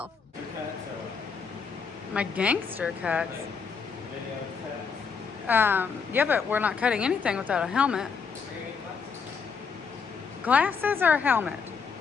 My gangster cuts. Yeah, but we're not cutting anything without a helmet. Glasses or a helmet?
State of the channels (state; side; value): quieter; right; 5.6 dB